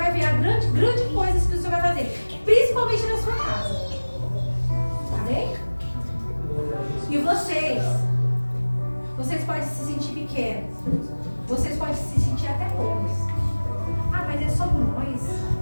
ver a grande coisas que o Senhor vai fazer. Principalmente na sua casa. Amém? E vocês podem se sentir pequenos. Vocês podem se sentir até poucos. Ah, mas é só nós.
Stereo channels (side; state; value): both; inverted; correlation -1.00